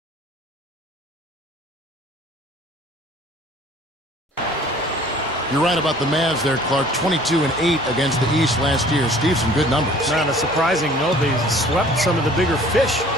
You're right about the Mavs there, Clark. 22-8 against the East last year. Steve, some good numbers. Not a surprising note. They swept some of the bigger fish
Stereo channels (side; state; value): both; normal; correlation 0.51